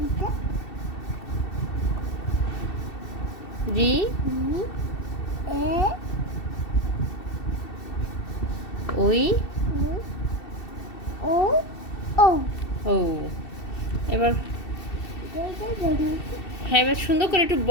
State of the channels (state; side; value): late; right; 2.7 ms